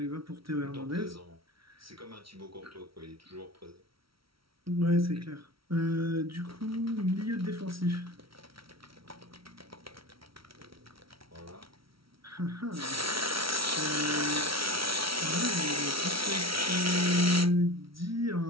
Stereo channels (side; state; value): left; late; 0.75 ms